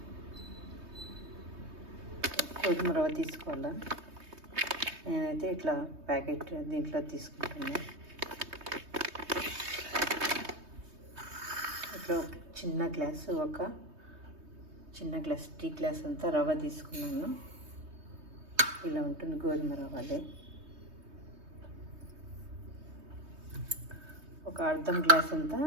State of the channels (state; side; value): late; left; 3.2 ms